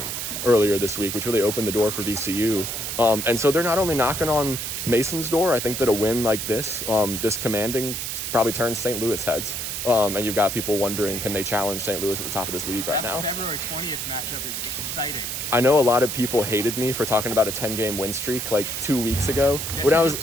earlier this week, which really opened the door for VCU. And so they're not only knocking on Mason's door, I think that a win like this, this commanding, probably turns St. Louis heads. And you've got people wondering, can they challenge St. Louis at the top of this league right now? That February 20th matchup is exciting. I know a lot of people hated me for talking about a 10-game win streak like 2 weeks ago. Guess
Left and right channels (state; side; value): noise; right; hiss, 4 dB below the sound